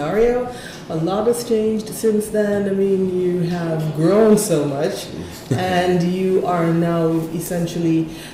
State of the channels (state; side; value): identical; both; correlation 1.00